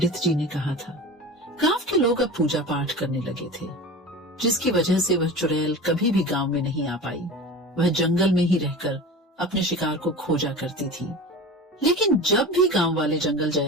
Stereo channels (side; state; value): both; normal; correlation 0.33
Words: जी ने कहा था। गांव के लोग अब पूजा पाठ करने लगे थे, जिसकी वजह से वह चुड़ैल कभी भी गांव में नहीं आ पाई। वह जंगल में ही रहकर अपने शिकार को खोजा करती थी। लेकिन जब भी गांव वाले जंगल